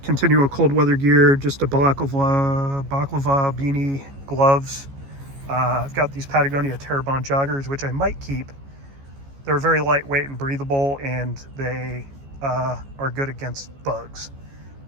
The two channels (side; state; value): left; late; 14 ms